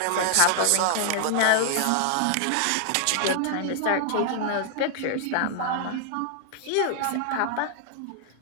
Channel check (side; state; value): both; different; correlation -0.01